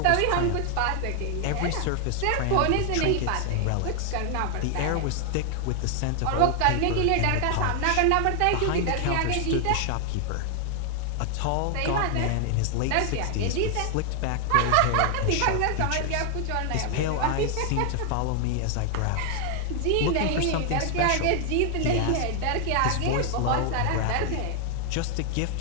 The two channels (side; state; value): both; different; correlation 0.00